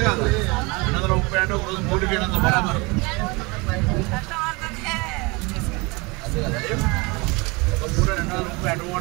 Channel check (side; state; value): left; quieter; 26.7 dB